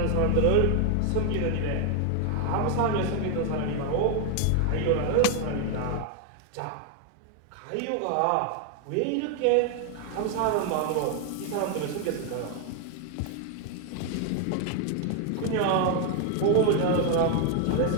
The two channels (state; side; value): different; both; correlation 0.00